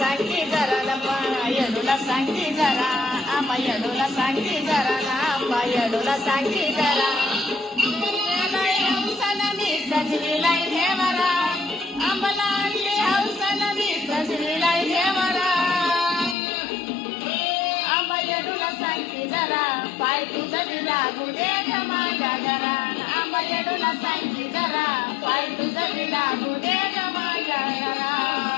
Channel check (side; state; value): right; drops out; at 16.4 s